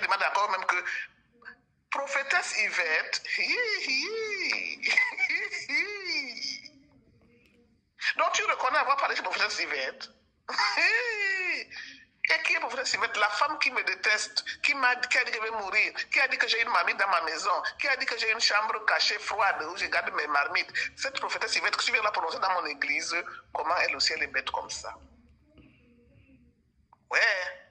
demande encore même que prophétesse Yvette, donc tu reconnais avoir parlé de prophétesse Yvette. Et qui est prophétesse Yvette? La femme qui me déteste, qui a dit que je vais mourir, qui a dit que j'ai une marmite dans ma maison, qui a dit que j'ai une chambre cachée froide où je garde mes marmites. Cette prophétesse Yvette que tu viens la prononcer dans mon église, comment elle aussi elle est bête comme ça? Ouais.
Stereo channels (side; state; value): both; identical; correlation 1.00